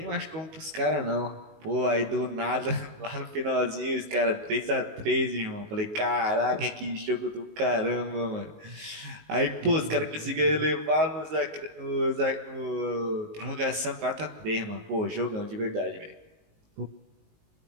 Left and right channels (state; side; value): late; left; 19 ms